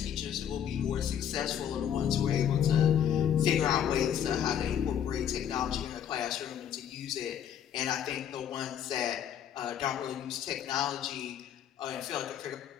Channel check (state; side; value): quieter; right; 9.3 dB